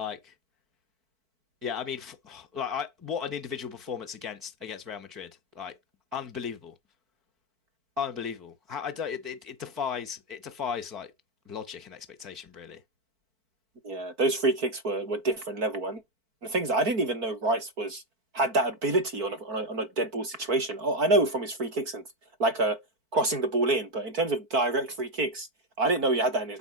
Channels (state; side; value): late; left; 4.5 ms